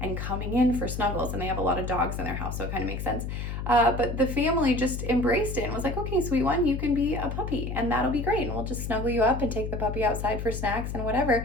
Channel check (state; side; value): noise; left; hum, 5 dB below the sound